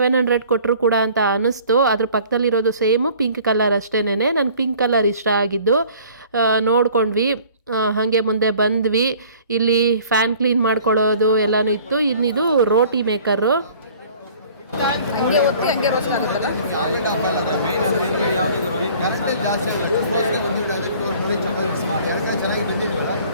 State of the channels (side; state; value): both; inverted; correlation -0.51